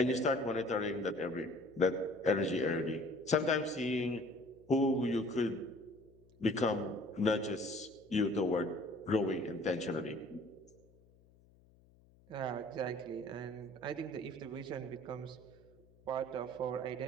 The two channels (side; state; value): left; noise; hum, 28 dB below the sound